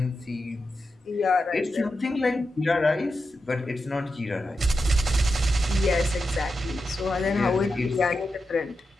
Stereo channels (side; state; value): both; normal; correlation 0.88